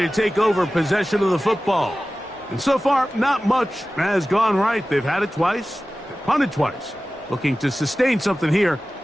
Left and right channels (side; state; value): both; normal; correlation 0.96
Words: to take over possession of the football. And so far, not much has gone right. They've had it twice, they've punted twice. Looking to sustain something here